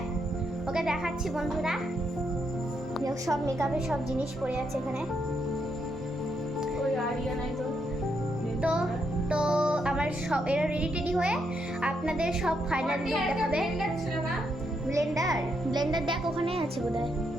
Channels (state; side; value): normal; both; correlation 0.79